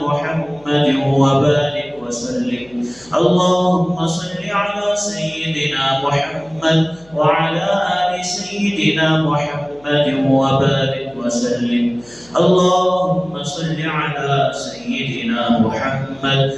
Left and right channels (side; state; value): left; noise; hum, 28 dB below the sound